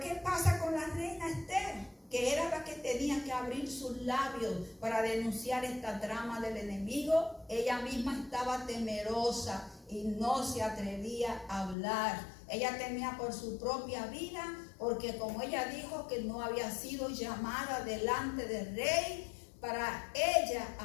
pasa con la reina Esther? Que era la que tenía que abrir sus labios para denunciar esta trama del enemigo. Ella misma estaba temerosa y no se atrevía a hablar. Ella temía por su propia vida, porque como ella dijo que no había sido llamada delante del rey para ella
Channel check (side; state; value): right; drops out; at 11.8 s